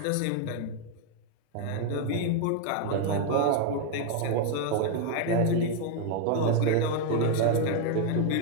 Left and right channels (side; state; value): both; different; correlation 0.01